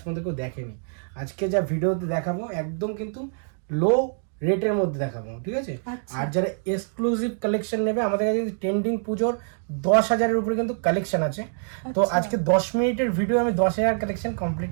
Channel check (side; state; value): left; silent; 62 dB below the other